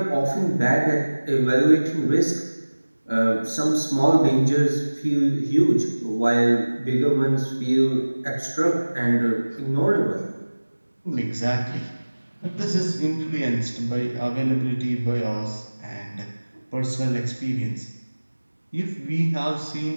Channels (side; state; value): both; inverted; correlation -1.00